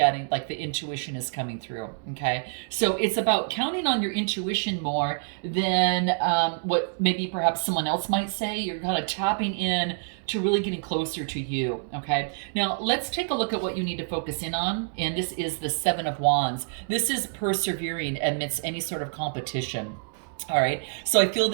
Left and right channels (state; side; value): silent; left; digital silence